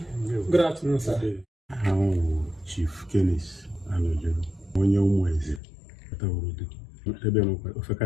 good afternoon, sir. Chief Canise, Anojuru, onye umweze, kata urudu. Ebe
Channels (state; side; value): drops out; right; at 5.6 s